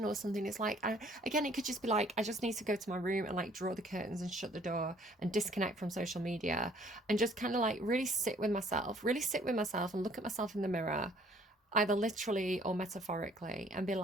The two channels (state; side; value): normal; both; correlation 0.59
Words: or something. It's like, again, it could just be like, I just need to go to my room and like draw the curtains and shut the door and disconnect from social media and just kind of like really sit with myself, and look at myself in the mirror, either literally or metaphorically, and be